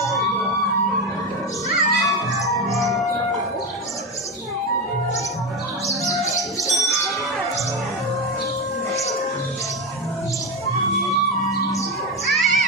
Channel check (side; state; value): both; normal; correlation 0.15